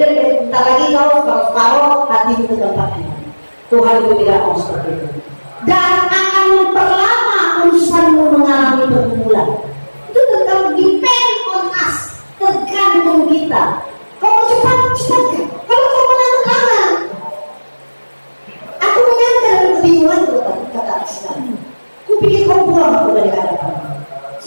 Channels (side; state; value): both; inverted; correlation -1.00